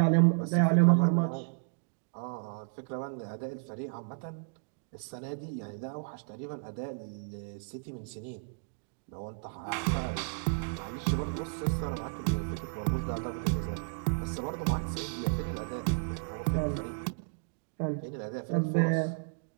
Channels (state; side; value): silent; left; digital silence